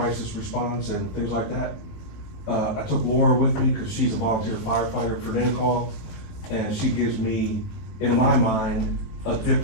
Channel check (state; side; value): late; right; 19 ms